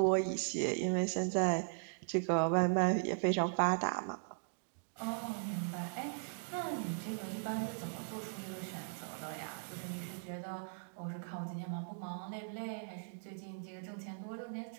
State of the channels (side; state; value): left; silent; digital silence